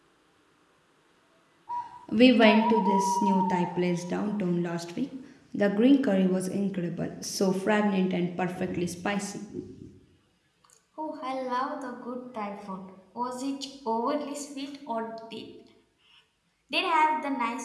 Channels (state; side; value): identical; both; correlation 1.00